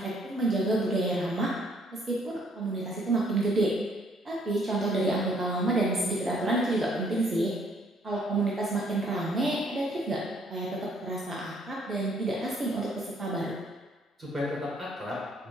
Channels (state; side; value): normal; both; correlation 0.65